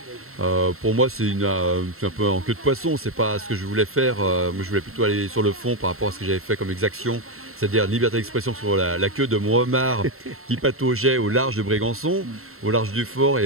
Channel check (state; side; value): late; left; 0.62 ms